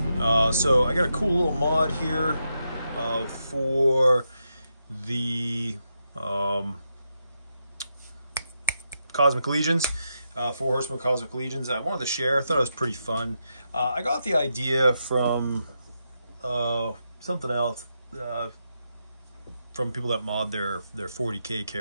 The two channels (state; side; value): inverted; both; correlation -0.84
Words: So I got a cool little mod here for the Cosmic Legions, 4 Horsemen Cosmic Legions. I wanted to share. I thought it was pretty fun. I got the idea from something else, from people that mod their 40K